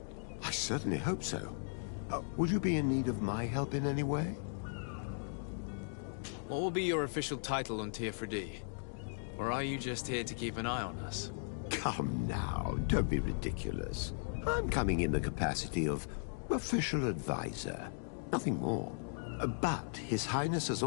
I certainly hope so. Would you be in need of my help in any way? What will be your official title on Teofredi? Or are you just here to keep an eye on us? Come now, don't be ridiculous. I'm coming in the capacity of official advisor, nothing more. But His Highness has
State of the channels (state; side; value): silent; right; digital silence